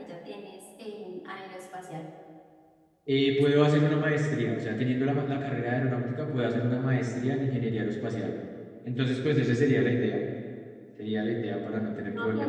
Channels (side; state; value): both; identical; correlation 1.00